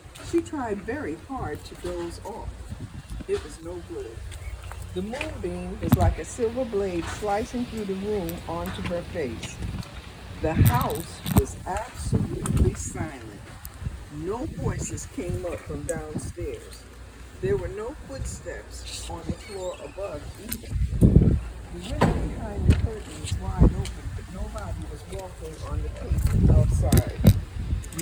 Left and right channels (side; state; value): both; identical; correlation 1.00